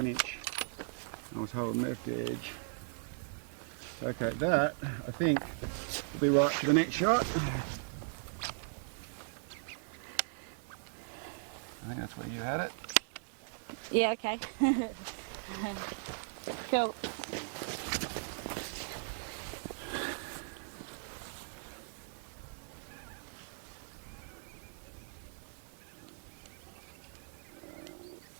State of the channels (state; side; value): silent; left; 52 dB below the other